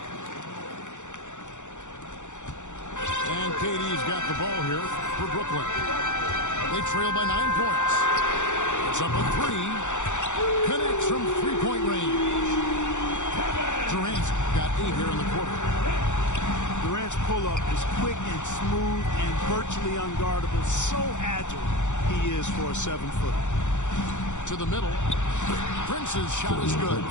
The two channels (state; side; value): late; right; 0.85 ms